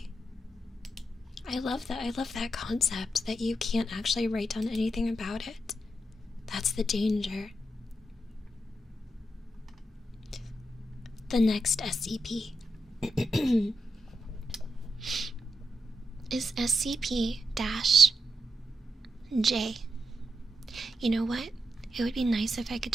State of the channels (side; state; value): both; normal; correlation 0.85